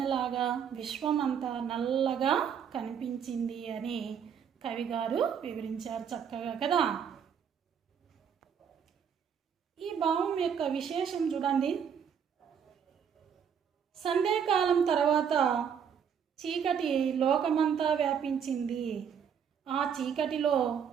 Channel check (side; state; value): left; quieter; 7.6 dB